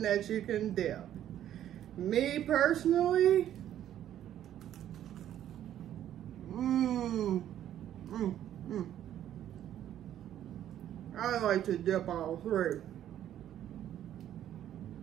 that you can dip. Me personally, I like to dip all three.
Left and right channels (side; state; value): left; quieter; 11.3 dB